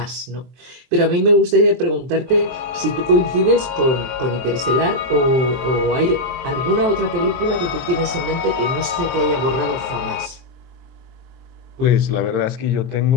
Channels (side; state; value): left; late; 23 ms